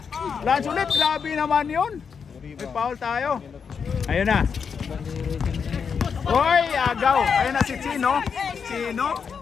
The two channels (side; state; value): right; quieter; 6.3 dB